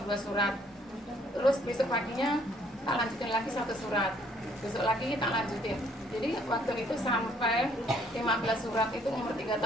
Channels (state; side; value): normal; both; correlation 0.64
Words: 2 surat. Terus besok paginya tak lanjutin lagi 1 surat. Besok lagi tak lanjutin. Jadi waktu itu sampai 15 surat itu umur 3